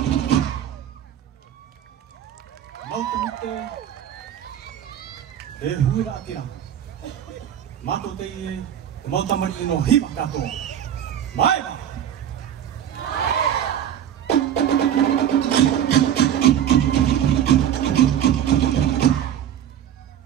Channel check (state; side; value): quieter; left; 10.0 dB